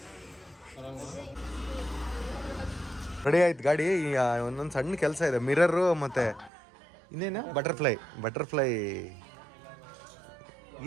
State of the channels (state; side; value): drops out; left; at 6.5 s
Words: ರೆಡಿ ಆಯ್ತು ಗಾಡಿ. ಒಂದೊಂದು ಸಣ್ಣ ಕೆಲಸ ಇದೆ. ಮಿರರು ಮತ್ತು ಇನ್ನೇನು ಬಟರ್ಫ್ಲೈ